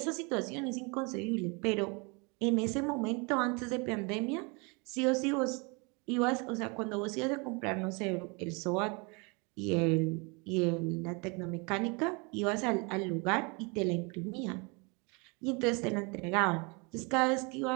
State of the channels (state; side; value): quieter; left; 30.6 dB